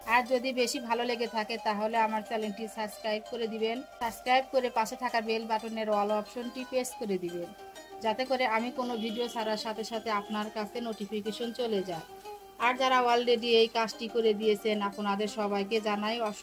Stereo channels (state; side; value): identical; both; correlation 1.00